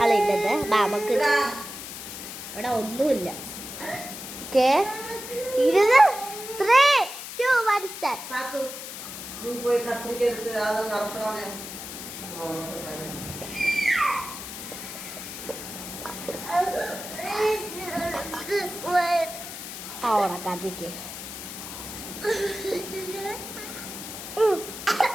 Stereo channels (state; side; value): noise; left; hiss, 9 dB below the sound